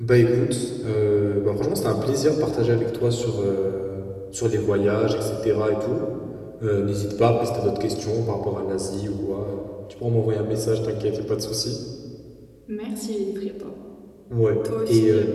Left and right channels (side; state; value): both; identical; correlation 1.00